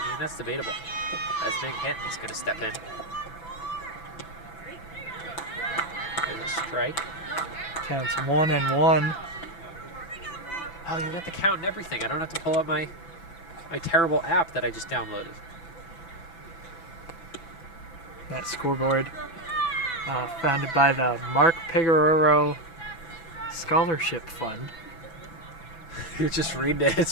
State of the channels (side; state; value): right; late; 6.0 ms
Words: mean, that's debatable. As Big Hinton's going to step in. There's a strike. Counts 1-1. Oh, you got the count and everything. I don't have to pull up my terrible app that I just downloaded. That scoreboard, founded by the Mark Pigoraro Scholarship Fund. You're just reading it.